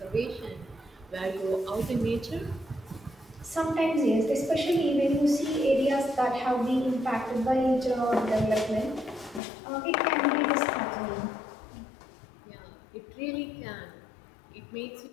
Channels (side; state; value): right; drops out; at 9.4 s